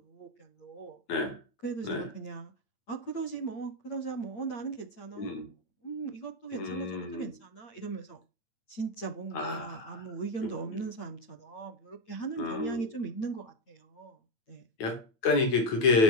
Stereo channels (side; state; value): right; late; 9.2 ms